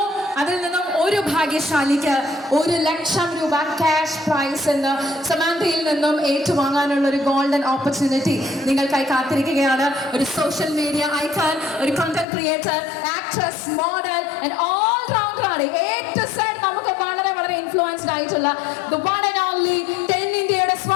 അതിൽ നിന്നും ഒരു ഭാഗ്യശാലിക്ക് 1 ലക്ഷം രൂപ ക്യാഷ് പ്രൈസ് എന്ന് സമാന്തയിൽ നിന്നും ഏറ്റുവാങ്ങാനുള്ള ഒരു ഗോൾഡൻ ഓപ്പർച്യൂണിറ്റി നിങ്ങൾക്കായി കാത്തിരിക്കുകയാണ്. ഒരു സോഷ്യൽ മീഡിയ ഐക്കൺ, ഒരു content creator, actress, model and all rounder ആണ്. A to Z നമുക്ക് വളരെ വളരെ ഇൻഫ്ലുവൻസ്ഡ് ആയിട്ടുള്ള the one and only 10 ഇന്ത്യയുടെ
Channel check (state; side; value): drops out; right; at 12.2 s